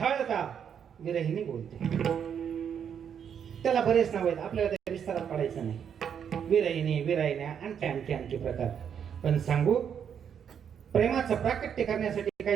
विरहिणी बोलते. त्याला बरेच नाव आहेत, आपल्याला त्या विस्तारात पडायचं नाही. विरहिणी, विरहिण्या आणखी आणखी प्रकार. पण सांगू प्रेमाचं प्राकट्य करण्यासाठी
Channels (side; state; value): left; quieter; 8.0 dB